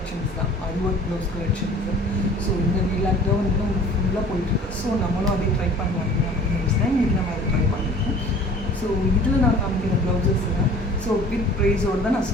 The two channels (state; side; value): normal; both; correlation 0.47